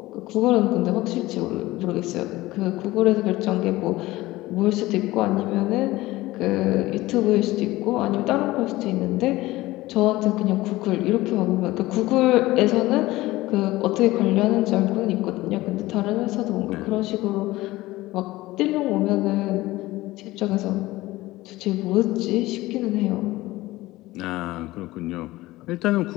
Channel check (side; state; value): right; quieter; 18.3 dB